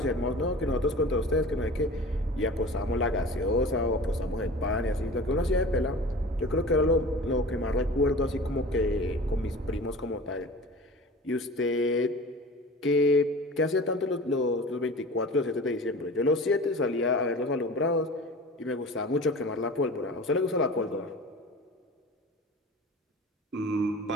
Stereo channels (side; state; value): both; normal; correlation 0.38